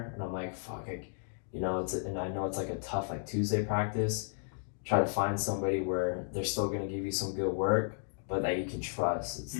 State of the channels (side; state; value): right; silent; digital silence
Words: and I'm like, fuck, and I know it's like a tough like Tuesday practice, try to find somebody where they're still gonna give you some good work, but that you can trust. It's